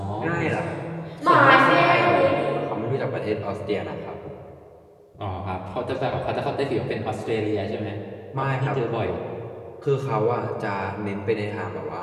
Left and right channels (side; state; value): both; identical; correlation 1.00